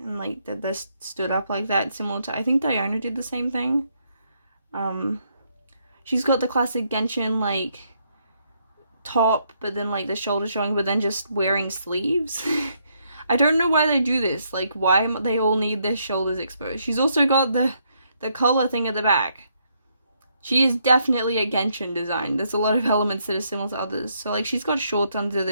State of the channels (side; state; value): both; inverted; correlation -0.74